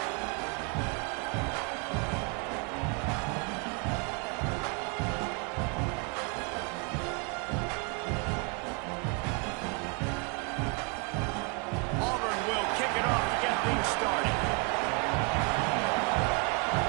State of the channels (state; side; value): quieter; left; 31.9 dB